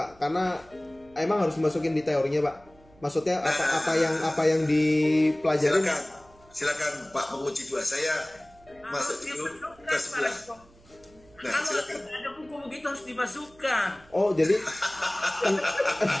Karena emang harus dimasukin di teorinya Pak. Maksudnya apa yang dipelajarin? Silakan Pak penguji dua. Saya masuk dulu ke sebelah. Nah, silakan. Ada buku begitu harus dimasukkan. Oh, jadi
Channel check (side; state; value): right; noise; hum, 27 dB below the sound